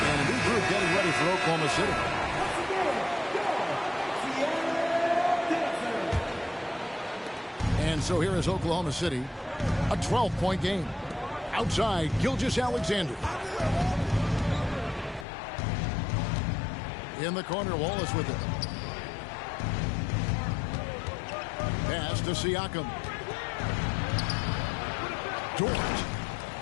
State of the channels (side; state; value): right; drops out; at 15.2 s